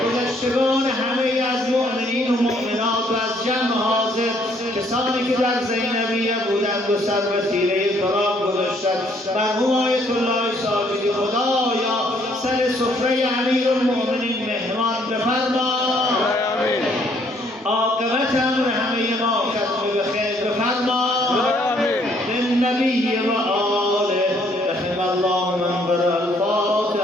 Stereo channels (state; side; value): normal; both; correlation 0.66